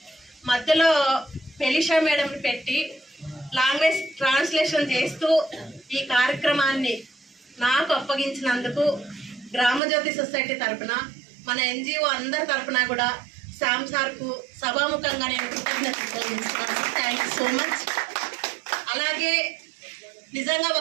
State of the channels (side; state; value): left; drops out; at 9.8 s